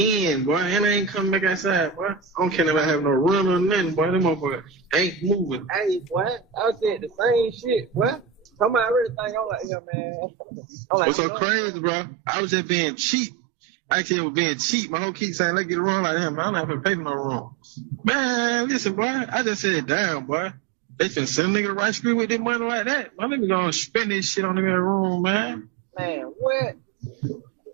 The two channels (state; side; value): drops out; left; at 9.7 s